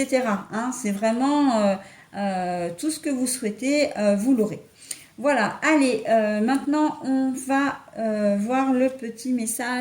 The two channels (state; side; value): identical; both; correlation 1.00